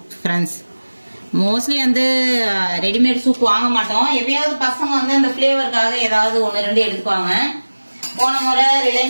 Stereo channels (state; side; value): inverted; both; correlation -1.00